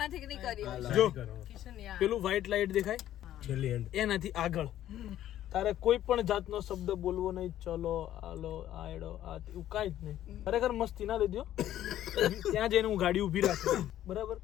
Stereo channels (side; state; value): right; quieter; 12.4 dB